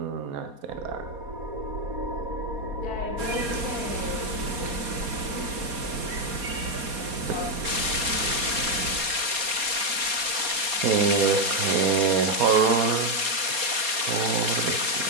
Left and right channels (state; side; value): late; left; 4.2 ms